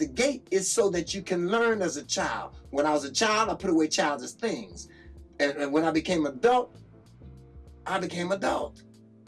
gate is so that you can learn as a child. When I was a child, I put away childish things. And when I became adult, I became adult.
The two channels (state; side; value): identical; both; correlation 1.00